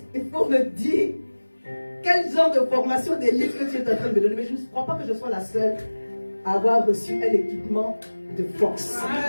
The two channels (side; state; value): both; inverted; correlation -1.00